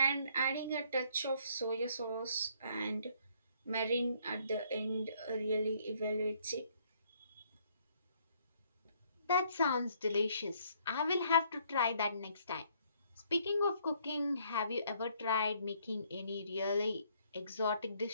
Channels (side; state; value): both; inverted; correlation -0.66